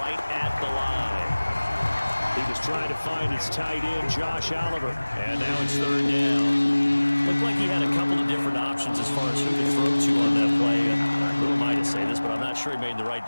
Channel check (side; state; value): both; inverted; correlation -1.00